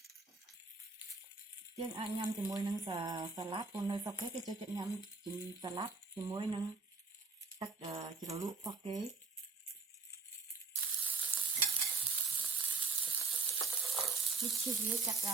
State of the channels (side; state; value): left; quieter; 4.3 dB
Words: យើងអាចញ៉ាំជាមួយនឹងសាឡាត់ព្រោះនៅស្រុកគេចូលចិត្តញ៉ាំសាឡាត់ជាមួយនឹងទឹកជ្រលក់របស់គេនេះឈីសវាចាប់ដ